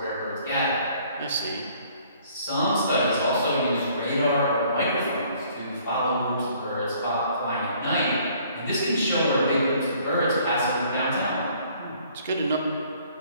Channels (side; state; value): both; inverted; correlation -0.59